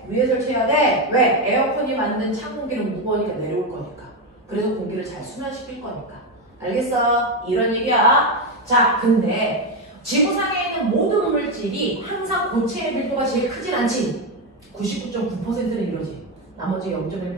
위에 설치해야 돼. 왜? 에어컨이 만든 찬 공기는 무거우니까 내려올 거니까. 그래서 공기를 잘 순환시킬 거니까. 알겠어? 이런 얘기야. 자, 근데 지구상에 있는 모든 물질이 항상 고체의 밀도가 제일 크진 않지. 99.9%는 이러지. 나머지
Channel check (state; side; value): normal; both; correlation 0.09